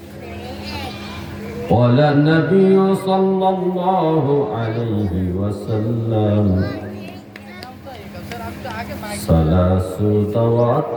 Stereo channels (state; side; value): identical; both; correlation 1.00